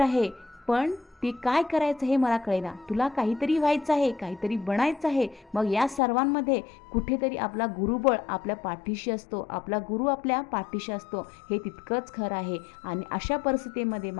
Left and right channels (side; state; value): right; drops out; at 6.0 s